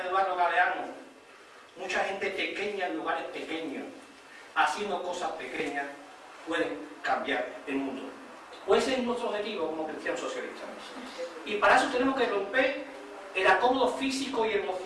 Eduardo Galeano: mucha gente pequeña en lugares pequeños, haciendo cosas pequeñas, pueden cambiar el mundo. Pues ese es nuestro objetivo como cristianos socialistas. Y para eso tenemos que romper el acomodo físico y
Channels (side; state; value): both; identical; correlation 1.00